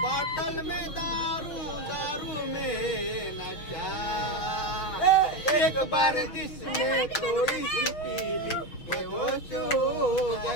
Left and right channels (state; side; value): late; right; 6.6 ms